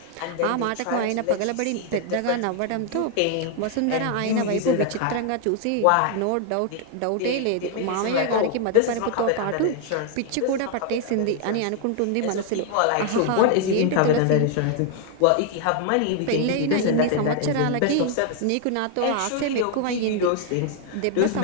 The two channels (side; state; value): both; different; correlation 0.00